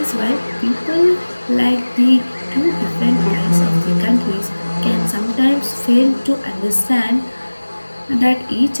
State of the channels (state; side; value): inverted; both; correlation -1.00